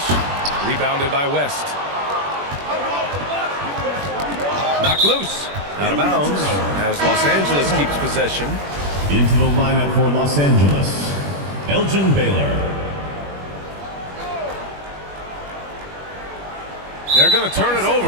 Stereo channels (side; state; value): left; late; 21 ms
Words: Rebounded by West. Knocked loose. Out of bounds as Los Angeles keeps possession. Into the lineup for Los Angeles, Elgin Baylor. They're going to turn it